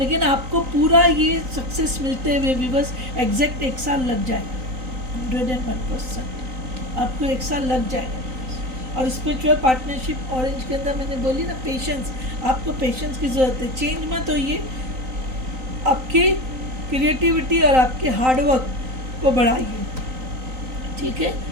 आपको पूरा ये सक्सेस मिलते हुए भी बस एग्जैक्ट 1 साल लग जाएगा, 101% आपको 1 साल लग जाएगा। और स्पिरिचुअल पार्टनरशिप ऑरेंज के अंदर मैंने बोली ना, पेशेंस, आपको पेशेंस की ज़रूरत है। चेंज मत होइए, आपकी क्रिएटिविटी और आपके हार्डवर्क को बढ़ाइए, ठीक है,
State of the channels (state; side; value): late; left; 3.9 ms